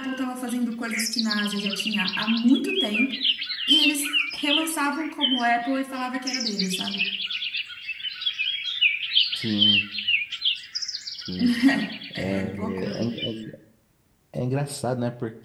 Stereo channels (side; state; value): both; identical; correlation 1.00